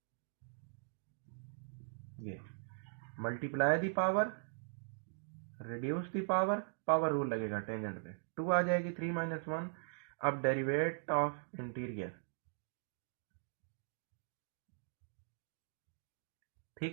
ये multiply the power reduce the power, power rule लगेगा टेंजेंट पे, 2 आ जाएगी 3 माइनस 1। अब डेरिवेट ऑफ इंटीरियर,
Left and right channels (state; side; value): silent; left; digital silence